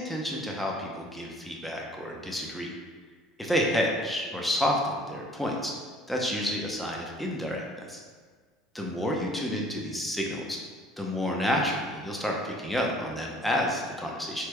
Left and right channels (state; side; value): normal; both; correlation 0.54